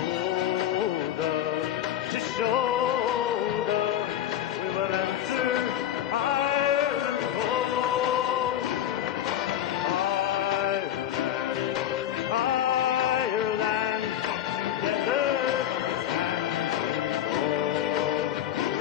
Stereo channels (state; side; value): quieter; right; 11.2 dB